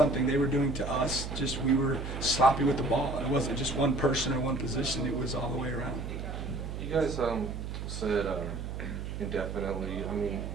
they were doing to us. Just we were sloppy with the ball. It wasn't just one person or one position. It was all the way around. You guys said indefinitely. I mean,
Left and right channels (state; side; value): noise; right; hum, 6 dB below the sound